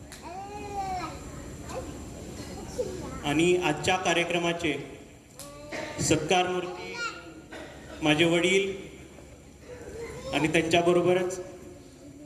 आणि आजच्या कार्यक्रमाचे सत्कार मूर्ती माझे वडील आणि त्यांच्याबरोबरच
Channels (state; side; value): identical; both; correlation 1.00